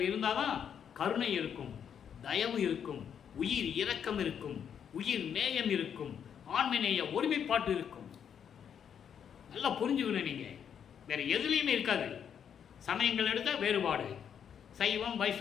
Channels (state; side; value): quieter; right; 8.2 dB